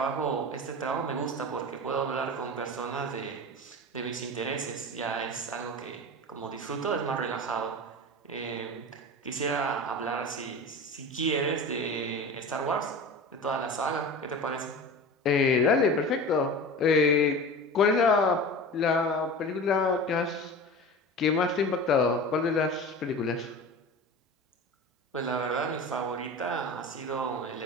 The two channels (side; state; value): both; normal; correlation 0.32